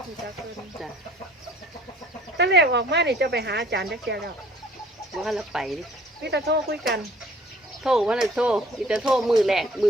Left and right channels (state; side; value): normal; both; correlation 0.54